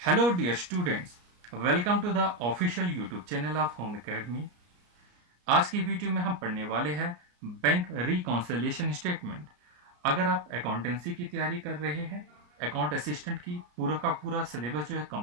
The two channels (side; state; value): left; late; 34 ms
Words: dear students, welcome to the official YouTube channel of Home Academy. आज की video में हम पढ़ने वाले हैं bank reconciliation statement. अगर आप accountancy की तैयारी कर रहे हैं, अकाउंट असिस्टेंट की पूरा का पूरा सिलेबस जो है